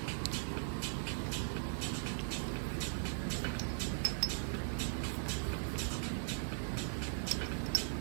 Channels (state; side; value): silent; left; digital silence